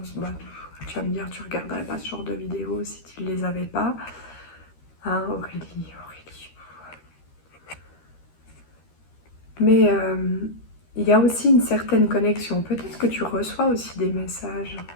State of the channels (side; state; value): right; late; 13 ms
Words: Bah, tu vas me dire, tu regarderais pas ce genre de vidéos si tu ne les avais pas. Hein, Aurélie. Mais il y a aussi une certaine connexion. Peut-être que tu reçois aussi des messages.